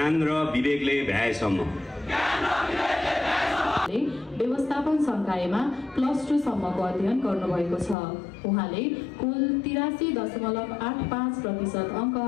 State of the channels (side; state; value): right; drops out; at 8.0 s